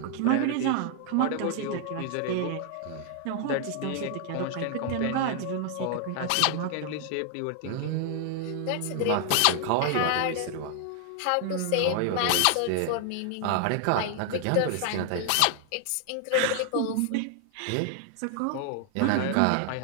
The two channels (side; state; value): both; different; correlation 0.00